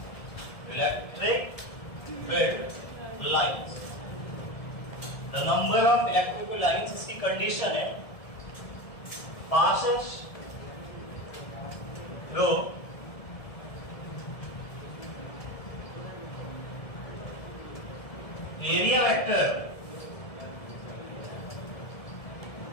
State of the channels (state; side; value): late; right; 1.7 ms